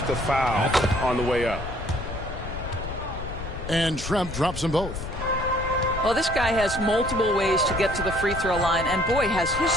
to foul on the way up. And Shrimp drops them both. Well, this guy has multiple ways to get to the free throw line, and boy, has his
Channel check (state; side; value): noise; left; rumble, 8 dB below the sound